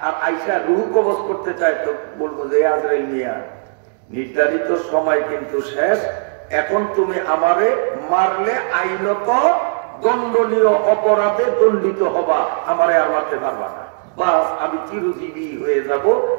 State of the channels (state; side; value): silent; left; digital silence